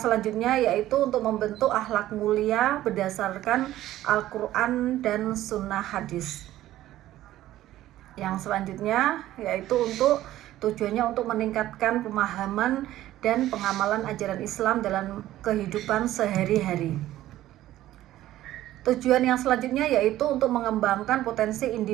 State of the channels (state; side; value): quieter; left; 14.3 dB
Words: selanjutnya yaitu untuk membentuk akhlak mulia berdasarkan Al-Quran dan Sunnah Hadis. Yang selanjutnya yaitu tujuannya untuk meningkatkan pemahaman dan pengamalan ajaran Islam dalam kehidupan sehari-hari. Tujuan yang selanjutnya yaitu untuk mengembangkan potensi